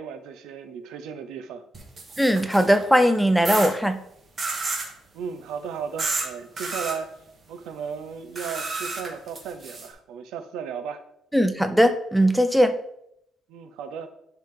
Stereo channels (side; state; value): both; normal; correlation 0.91